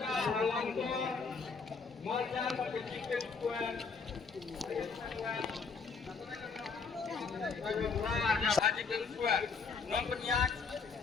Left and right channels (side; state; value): right; quieter; 5.0 dB